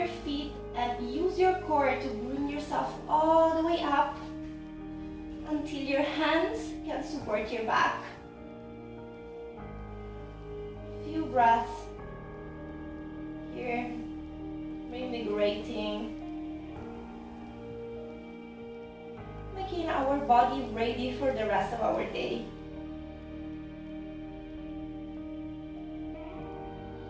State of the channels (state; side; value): identical; both; correlation 1.00